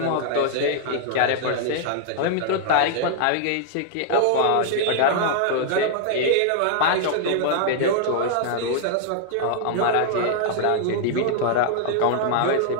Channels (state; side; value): different; both; correlation -0.01